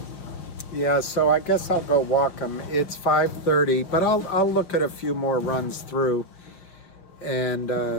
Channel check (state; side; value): late; right; 5.7 ms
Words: Yeah, so I guess I'll go walk him. It's 5:30, but I'll look at a few more runs through, and